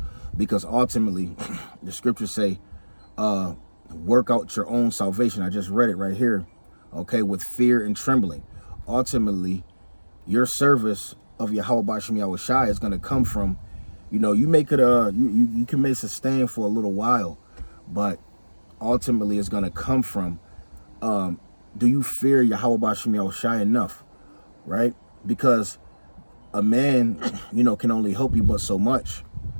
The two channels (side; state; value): both; inverted; correlation -1.00